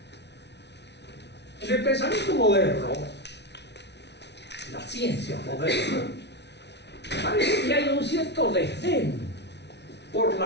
En el pensamiento moderno, la ciencia moderna, parece que hay un cierto desdén por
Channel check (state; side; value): late; right; 0.50 ms